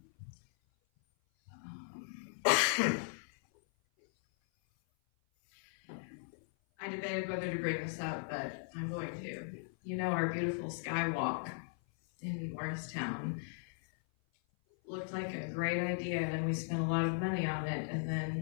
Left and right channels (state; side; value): silent; right; 53 dB below the other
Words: I I debated whether to bring this up, but I'm going to. You know, our beautiful skywalk in Morristown looked like a great idea, and we spent a lot of money on it. And